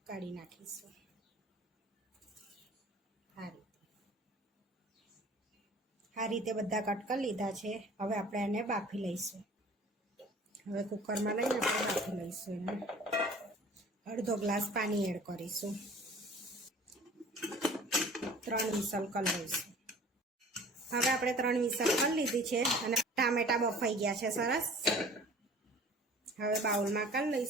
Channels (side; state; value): both; normal; correlation 0.47